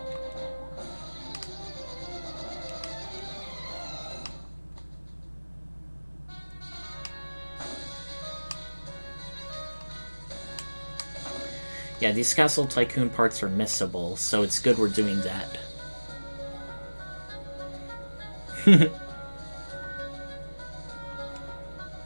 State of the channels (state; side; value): inverted; both; correlation -1.00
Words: Yeah, these Castle Tycoon parts are missable, so it's good we're doing that.